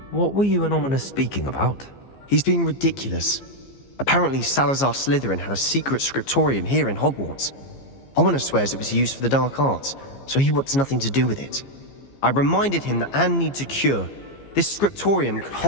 What were you and Ominous speaking about? He's being ridiculous. Apparently, Salazar Slytherin had a secret scriptorium here in Hogwarts. Ominous swears it was used for the dark arts, so he wants nothing to do with it. I reminded him that Anne needs a cure. This scriptorium could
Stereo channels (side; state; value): right; late; 15 ms